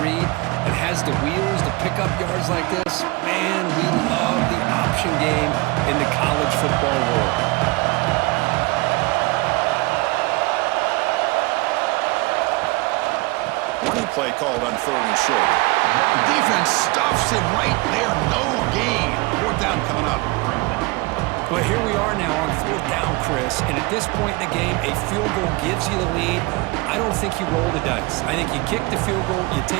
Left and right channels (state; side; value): quieter; left; 24.5 dB